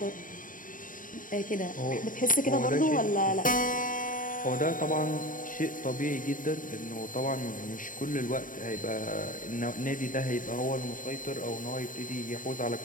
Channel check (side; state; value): right; late; 0.39 ms